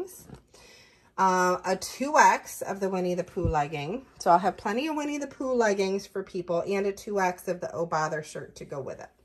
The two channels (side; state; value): both; identical; correlation 1.00